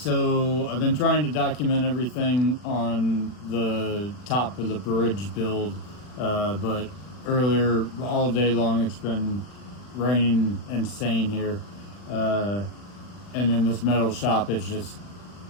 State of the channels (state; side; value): late; right; 40 ms